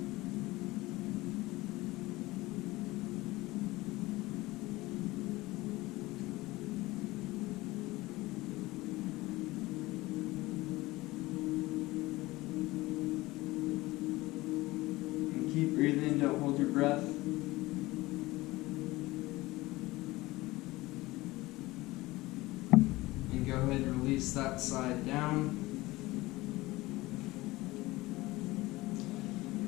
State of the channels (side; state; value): right; quieter; 19.7 dB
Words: Keep breathing, don't hold your breath. And go ahead and release that side down.